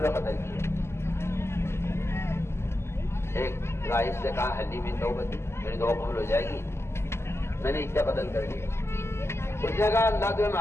قتل کیے، ایک رائس سے کہا حلی میں توبت میری دعا قبول ہو جائے گی، میں نے اتنا قتل کر دیا۔ اس نے کہا اللہ تمہیں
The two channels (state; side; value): late; right; 0.12 ms